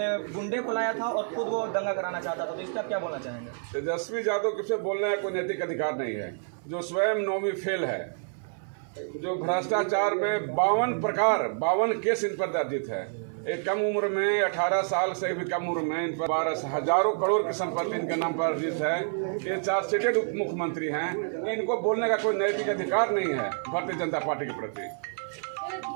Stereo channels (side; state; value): left; silent; 59 dB below the other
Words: गुंडे को लाया था और खुद वो दंगा कराना चाहता था, तो इसका क्या बोलना चाहेंगे? तेजस्वी यादव किसे बोलने का कोई नैतिक अधिकार नहीं है। जो स्वयं नौवीं फेल है, जो भ्रष्टाचार में 52 केस इन पर दर्जित है। एक कम उम्र में 18 साल से भी कम उम्र में इन पर 12 हजारों करोड़ की संपत्ति इनके नाम पर अर्जित है। ये चार्जशीटेड उप मुख्यमंत्री हैं। इनको बोलने का कोई नैतिक अधिकार नहीं है भारतीय जनता पार्टी के प्रति।